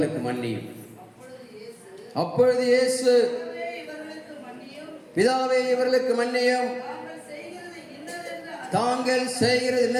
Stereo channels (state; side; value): identical; both; correlation 1.00